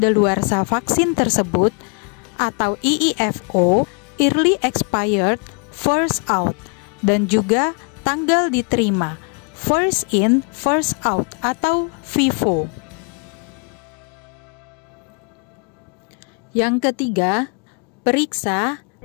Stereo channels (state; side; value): quieter; right; 37.4 dB